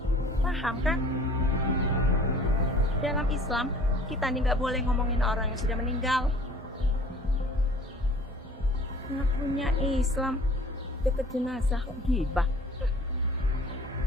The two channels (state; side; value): normal; both; correlation 0.49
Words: paham kan? Dalam Islam, kita nih nggak boleh ngomongin orang yang sudah meninggal. Nggak punya Islam, deket jenazah kok gibah.